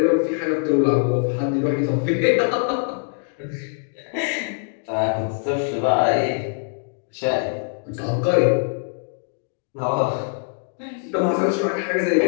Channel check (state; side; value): silent; right; digital silence